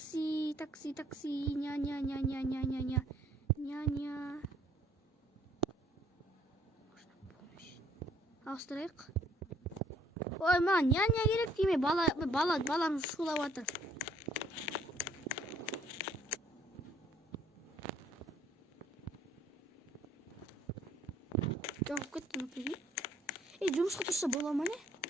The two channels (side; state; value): both; normal; correlation 0.62